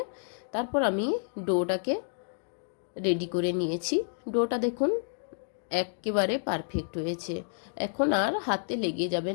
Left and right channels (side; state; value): right; silent; digital silence